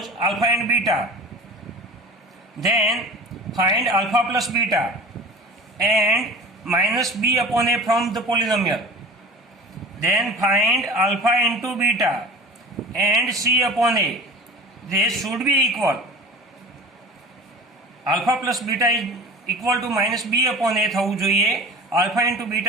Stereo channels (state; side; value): normal; both; correlation 0.38